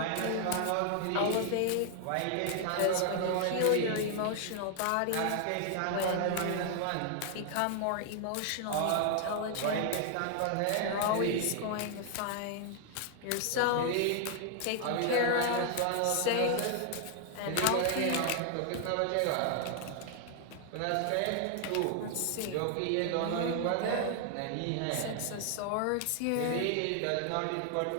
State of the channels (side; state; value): both; different; correlation 0.00